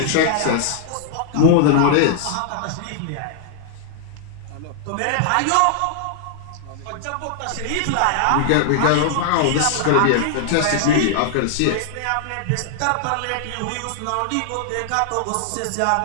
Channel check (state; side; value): different; both; correlation -0.01